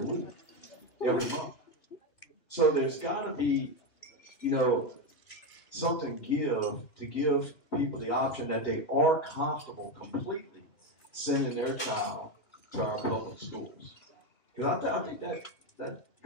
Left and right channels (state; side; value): late; right; 2.7 ms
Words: every month. So there's got to be, something to give people the option that they are comfortable completely sending their child to our public schools. Because I think that